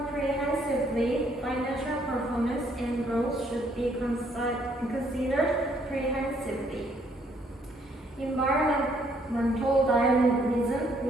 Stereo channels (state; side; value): normal; both; correlation 0.68